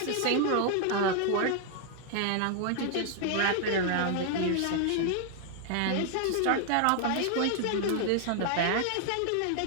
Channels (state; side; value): different; both; correlation 0.00